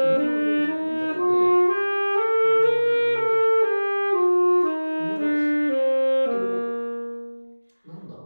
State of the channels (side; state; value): both; inverted; correlation -1.00